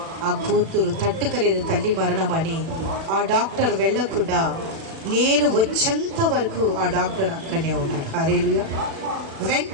ఆ కూతురు తట్టుకలేదు తల్లి మరణం అని. ఆ డాక్టర్ వెళ్ళకుండా నేను వచ్చేంత వరకు ఆ డాక్టర్ అక్కడనే ఉన్నాడు. హల్లెలూయా.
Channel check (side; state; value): left; late; 36 ms